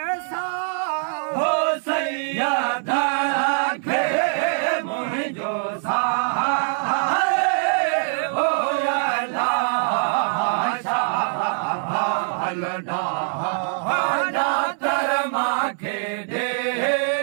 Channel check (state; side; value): silent; left; 63 dB below the other